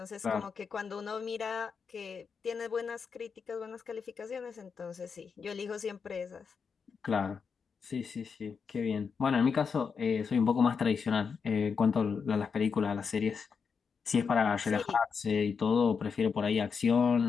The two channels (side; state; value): right; quieter; 5.9 dB